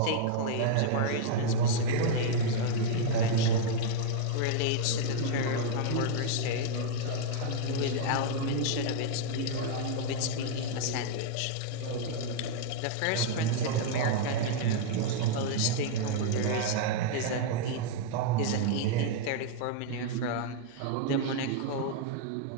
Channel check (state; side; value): different; both; correlation 0.00